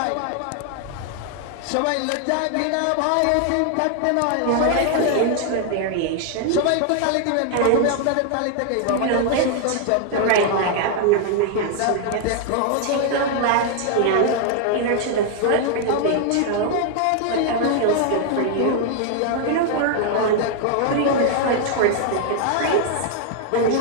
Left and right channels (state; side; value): different; both; correlation 0.00